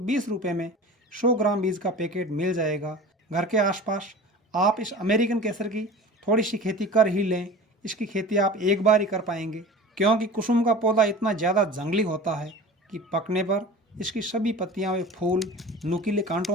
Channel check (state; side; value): normal; both; correlation 0.37